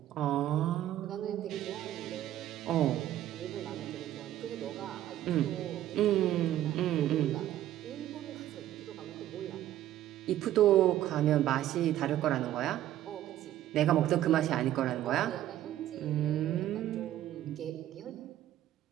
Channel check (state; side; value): quieter; left; 12.9 dB